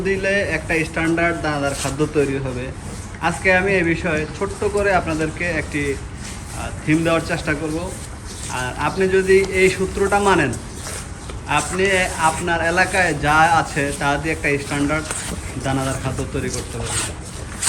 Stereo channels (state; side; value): identical; both; correlation 1.00